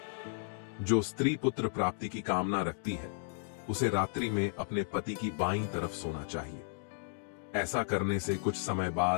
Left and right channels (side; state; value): right; silent; digital silence